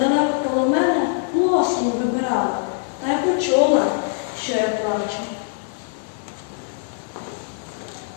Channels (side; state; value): right; silent; 64 dB below the other